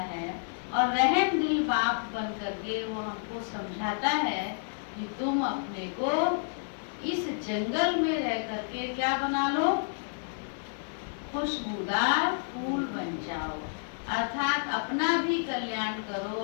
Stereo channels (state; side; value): silent; right; digital silence